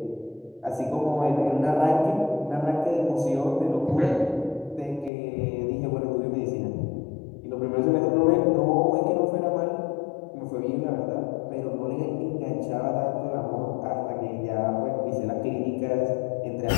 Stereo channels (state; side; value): drops out; right; at 5.1 s